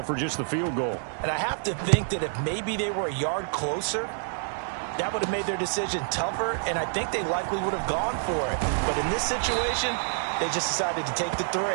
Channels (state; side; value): silent; left; digital silence